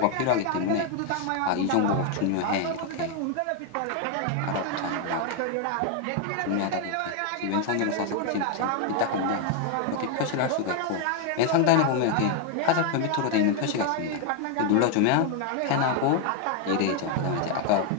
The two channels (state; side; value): different; both; correlation 0.00